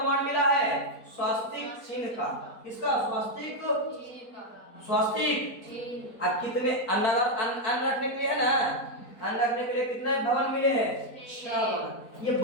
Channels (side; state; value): right; late; 4.3 ms